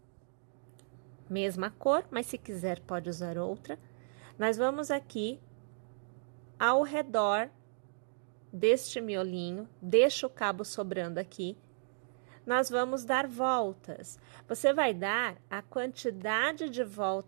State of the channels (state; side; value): silent; left; digital silence